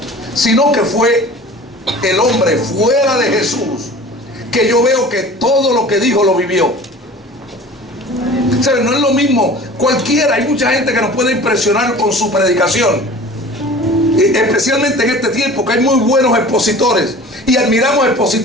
sino que fue el hombre fuera de Jesús, que yo veo que todo lo que dijo lo vivió. ¿Saben? No es lo mismo cualquiera. Hay mucha gente que nos puede impresionar con su predicación, especialmente en este tiempo que hay muy buenos expositores, y admiramos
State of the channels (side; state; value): both; normal; correlation 0.42